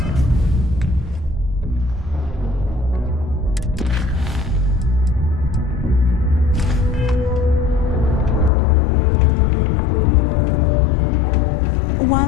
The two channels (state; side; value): drops out; right; at 8.5 s